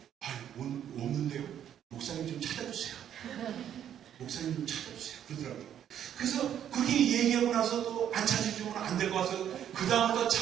없는데요. 목사님 좀 찾아주세요. 목사님 좀 찾아주세요. 그러더라고요. 그래서 그렇게 얘기하고 나서 또 안 찾아주면 안 될 것 같아서 그 다음부터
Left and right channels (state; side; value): quieter; left; 9.9 dB